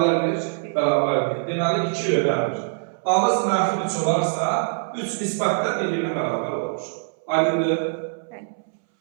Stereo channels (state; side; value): silent; left; 63 dB below the other